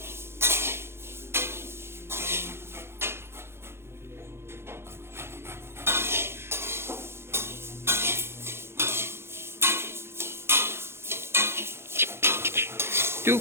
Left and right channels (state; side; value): late; left; 0.12 ms